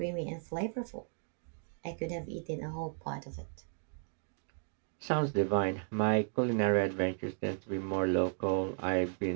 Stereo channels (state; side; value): silent; left; 55 dB below the other